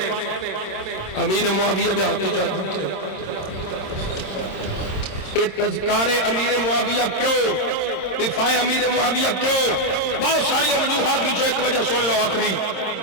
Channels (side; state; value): right; late; 26 ms